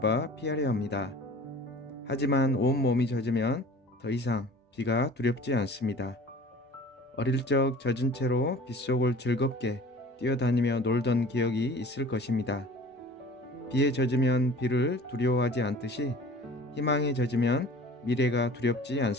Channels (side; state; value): both; normal; correlation 0.44